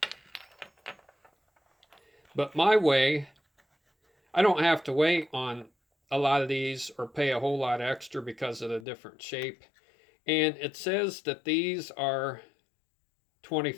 But my way, I don't have to wait on a lot of these or pay a whole lot extra because of the different shape. And it says that these are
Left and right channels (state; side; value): drops out; right; at 8.8 s